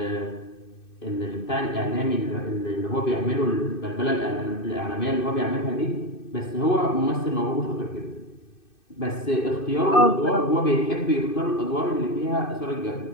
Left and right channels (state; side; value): late; right; 2.6 ms